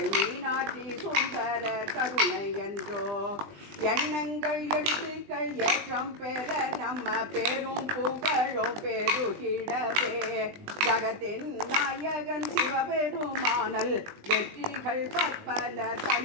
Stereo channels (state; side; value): late; left; 20 ms